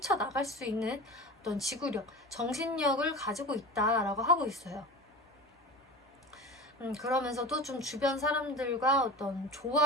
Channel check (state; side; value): normal; both; correlation 0.32